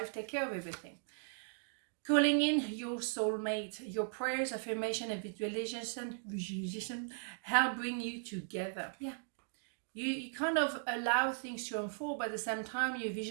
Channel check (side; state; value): left; silent; digital silence